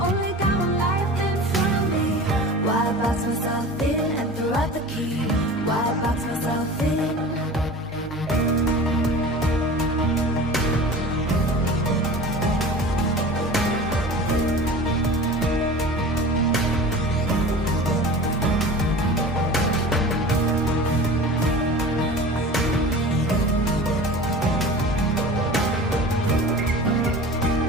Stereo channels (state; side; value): normal; both; correlation 0.37